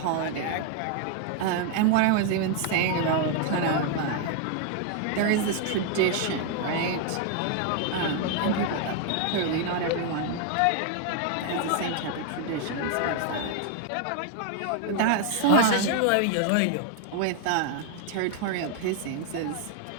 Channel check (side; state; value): both; different; correlation 0.00